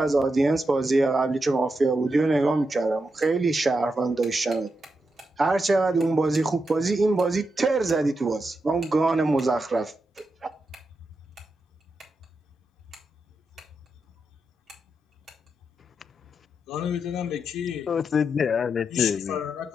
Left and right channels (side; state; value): both; normal; correlation 0.86